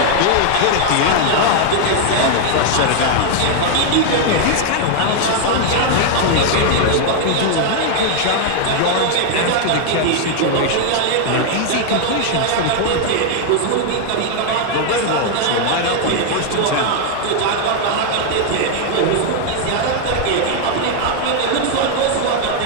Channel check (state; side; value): different; both; correlation 0.00